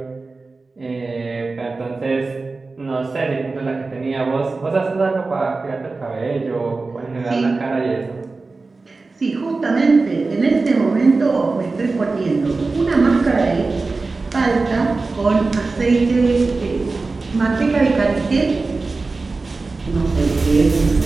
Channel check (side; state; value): left; quieter; 3.8 dB